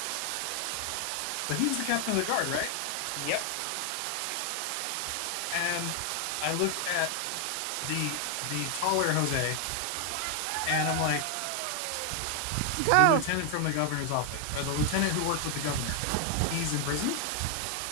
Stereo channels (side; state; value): both; different; correlation 0.00